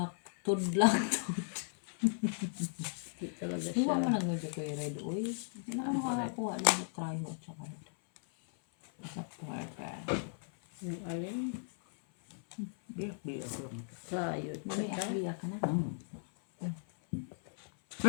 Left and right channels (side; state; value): right; silent; 53 dB below the other